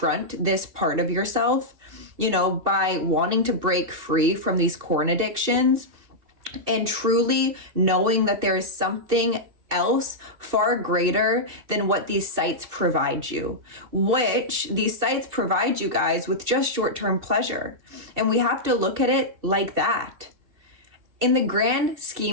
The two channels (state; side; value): late; left; 2.7 ms